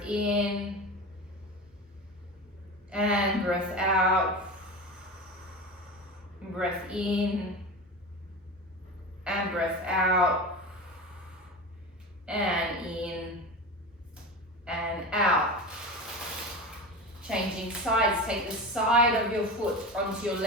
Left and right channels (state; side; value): normal; both; correlation 0.27